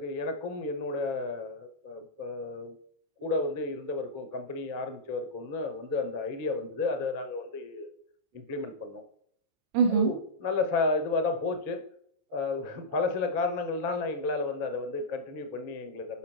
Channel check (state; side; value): late; left; 26 ms